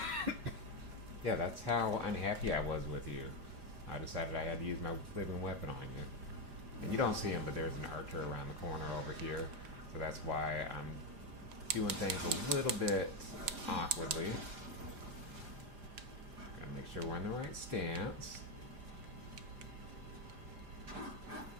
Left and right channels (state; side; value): late; left; 5.0 ms